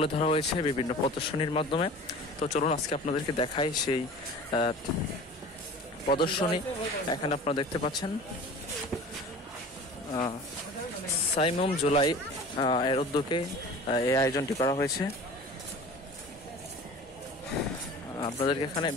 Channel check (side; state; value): both; normal; correlation 0.40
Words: ধরা হয়েছে বিভিন্ন প্রদর্শনীর মাধ্যমে। তো চলুন আজকে আপনাদেরকে দেখাই সেই প্রদর্শনী। এখানে আপনারা দেখতে পাচ্ছেন সাইমুম জুলাই এর উদ্যোগে এই আয়োজনটি করা হয়েছে। আপনাদেরকে এখানে